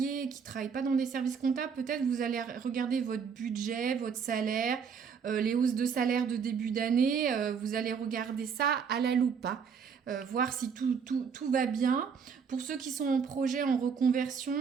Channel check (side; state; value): left; quieter; 6.4 dB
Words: et qui ne travaillent pas dans des services comptables, peut-être vous allez regarder votre budget, votre salaire, les hausses de salaire de début d'année. Vous allez regarder ça à la loupe, hein. Voir si tout va bien. Pour ceux qui sont en projet, en reconversion,